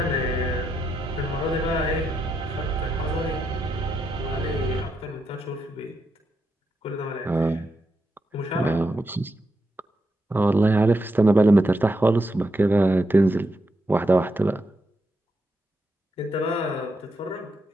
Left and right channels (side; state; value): both; normal; correlation 0.83